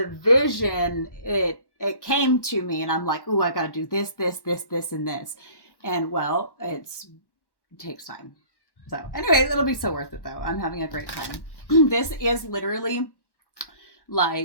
vision, it came to me, and I'm like, ooh, I got to do this, and this. And well, it takes time. So anyway, it'll be so worth it though. I'm having a great time. This is literally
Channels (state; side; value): late; right; 1.1 ms